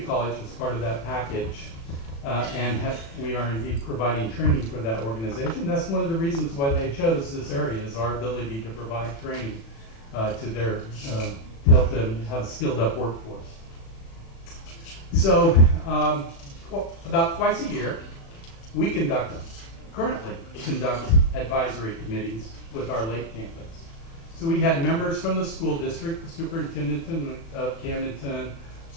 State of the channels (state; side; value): late; right; 36 ms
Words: College was part of that package, and we are indeed providing training for that organization. That's one of the reasons why they chose this area, is our ability to provide training to help them have a skilled up workforce. So about twice a year, we currently conduct advisory committees with our lake campus. So we had members from the school district, the superintendent of Camdenton,